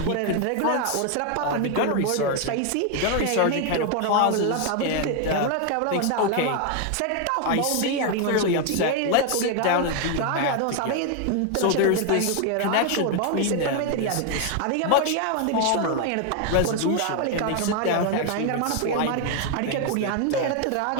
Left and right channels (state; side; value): different; both; correlation 0.01